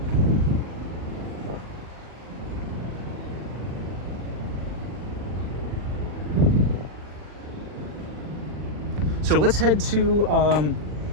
So let's head to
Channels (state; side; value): late; left; 40 ms